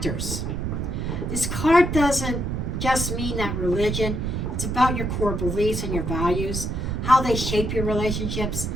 This card doesn't just mean that religion. It's about your core beliefs and your values, how they shape your relationships.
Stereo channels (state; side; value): noise; right; rumble, 2 dB below the sound